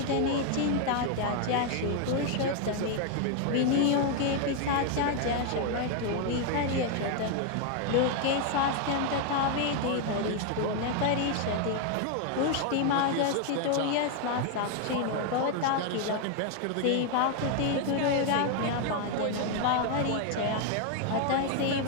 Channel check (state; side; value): different; both; correlation 0.01